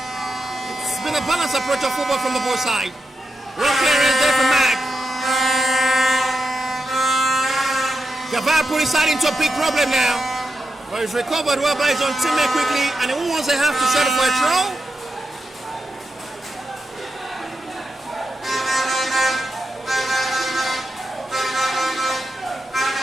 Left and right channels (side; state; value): both; normal; correlation 0.88